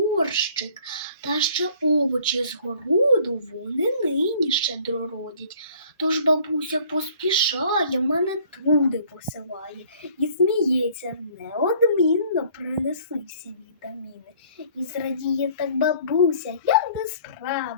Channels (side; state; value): both; inverted; correlation -0.55